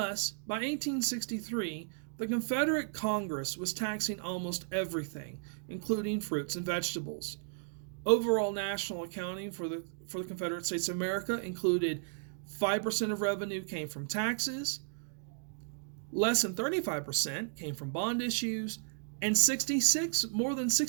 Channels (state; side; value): silent; left; digital silence